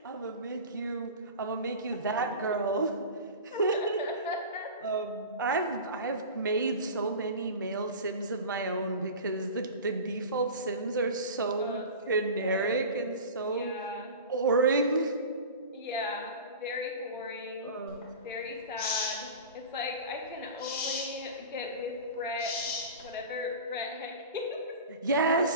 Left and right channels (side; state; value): both; inverted; correlation -0.33